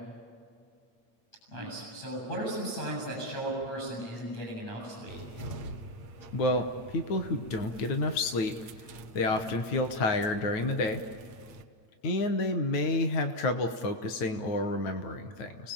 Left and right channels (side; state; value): right; late; 9.4 ms